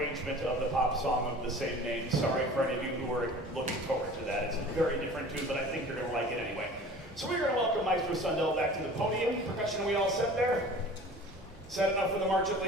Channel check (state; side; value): normal; both; correlation 0.43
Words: of the pop song of the same name. Sorry for any of you who are looking forward to that. It's a very different tune, but I think you're going to like it anyway. So we're going to welcome Maestro Sundell back to the podium. Percussion, we all set there? Set enough for the march at